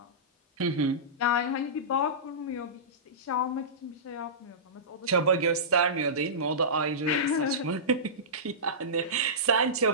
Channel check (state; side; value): normal; both; correlation -0.19